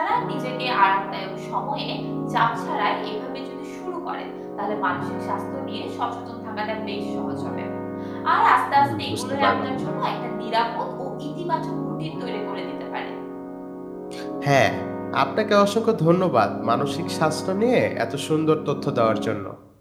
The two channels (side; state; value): both; identical; correlation 1.00